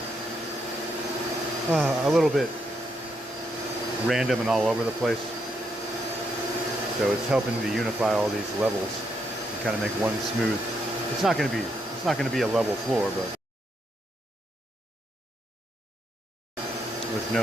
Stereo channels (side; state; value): both; normal; correlation 0.78